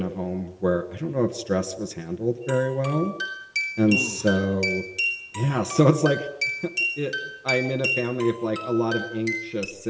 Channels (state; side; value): identical; both; correlation 1.00